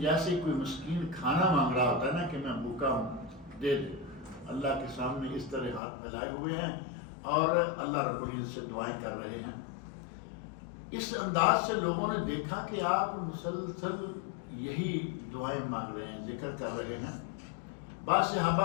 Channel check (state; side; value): drops out; right; at 5.8 s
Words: کوئی مسکین کھانا مانگ رہا ہوتا ہے نا کہ میں بھوکا ہوں دے دے، اللہ کے سامنے اس طرح ہاتھ پھیلائے ہوئے ہیں اور اللہ رب العزت سے دعائیں کر رہے ہیں۔ اس انداز سے لوگوں نے دیکھا کہ آپ مسلسل یہی دعائیں مانگ رہے ہیں، ذکر کر رہے ہیں۔ بعض